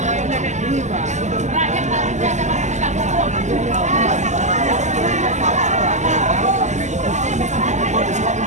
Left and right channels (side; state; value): left; late; 0.34 ms